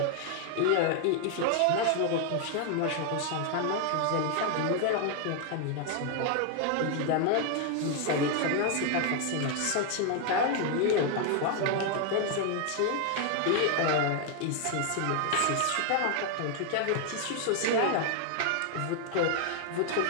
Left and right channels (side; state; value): both; different; correlation 0.00